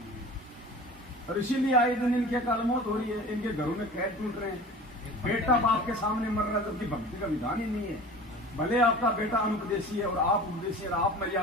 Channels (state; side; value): normal; both; correlation 0.39